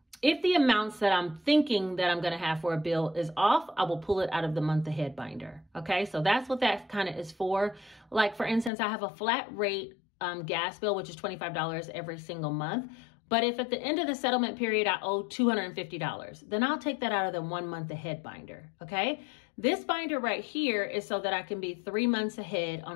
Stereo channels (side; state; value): right; drops out; at 8.7 s